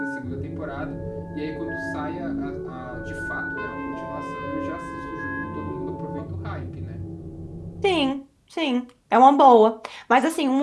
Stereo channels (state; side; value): identical; both; correlation 1.00